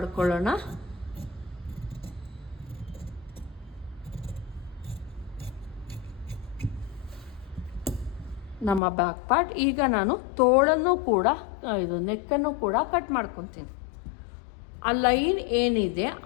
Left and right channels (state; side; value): drops out; right; at 8.8 s